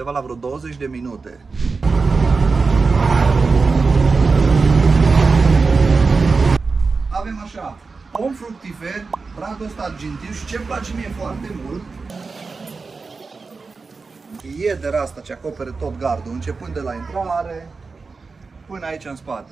la vreo 20 de minute. Avem așa, pom fructifer, bradul ăsta argintiu și ce-mi place mie foarte mult, iedera asta ce acopere tot gardul, începând de la intrare până aici în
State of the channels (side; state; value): left; quieter; 4.4 dB